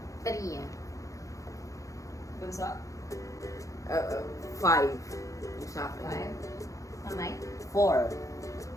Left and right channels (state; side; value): late; right; 0.16 ms